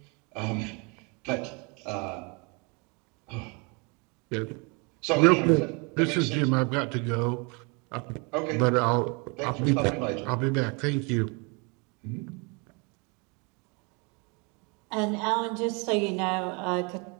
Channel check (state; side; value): quieter; left; 31.4 dB